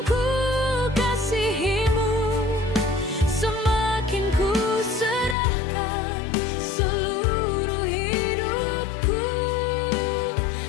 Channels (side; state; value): right; drops out; at 5.4 s